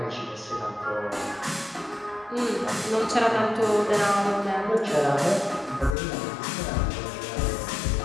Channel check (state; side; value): drops out; right; at 6.0 s